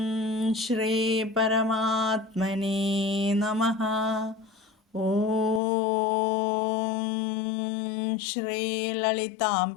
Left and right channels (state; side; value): drops out; right; at 5.6 s